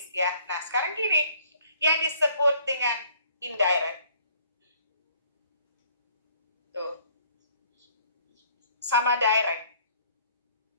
ya. Nah, sekarang gini, yang disebut dengan indirect, tuh, sama direct,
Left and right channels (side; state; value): both; inverted; correlation -0.59